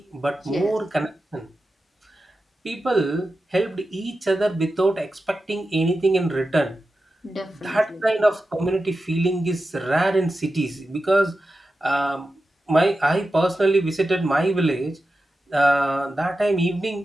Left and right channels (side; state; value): both; normal; correlation 0.92